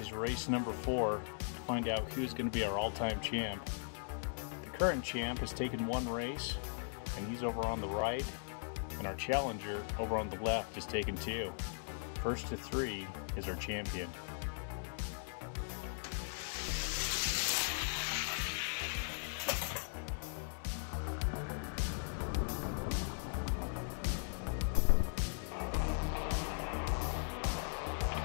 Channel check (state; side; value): silent; right; digital silence